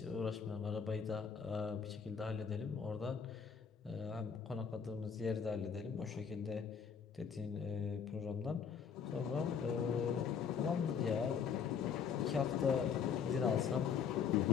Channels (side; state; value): right; quieter; 6.6 dB